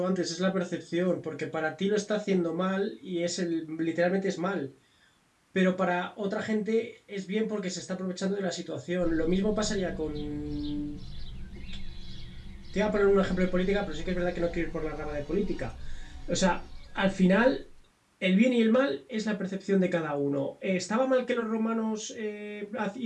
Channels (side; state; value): both; identical; correlation 1.00